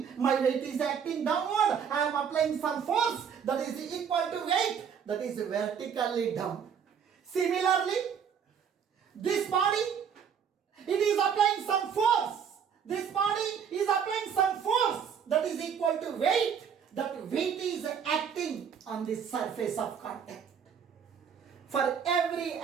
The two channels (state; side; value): quieter; left; 7.4 dB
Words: my weight is acting downward. I am applying some force that is equal to weight that is vertically down. Similarly, this body, it is applying some force. This body is applying some force that is equal to weight. That weight is acting on the surface of contact. For every